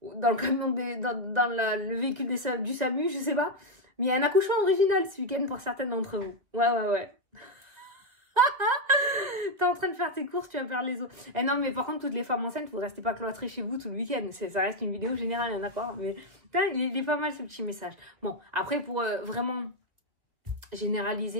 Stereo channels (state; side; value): late; left; 2.0 ms